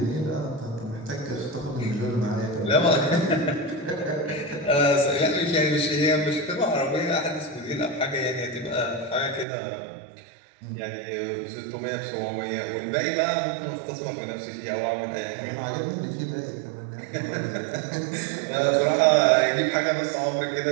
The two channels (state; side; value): drops out; left; at 9.5 s